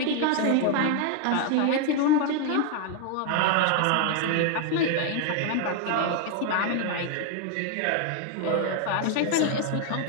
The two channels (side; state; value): both; different; correlation 0.01